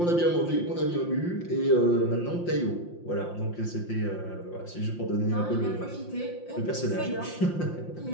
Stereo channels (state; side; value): late; right; 5.7 ms